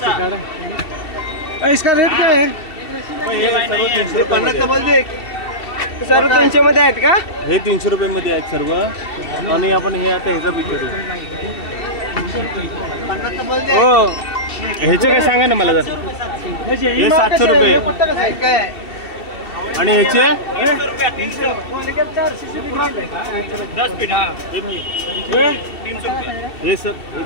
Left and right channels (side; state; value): right; late; 2.7 ms